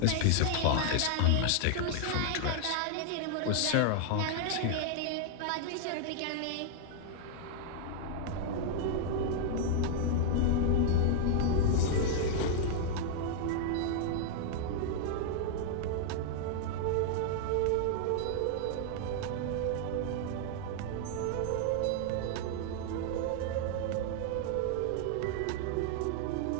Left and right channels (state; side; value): different; both; correlation -0.01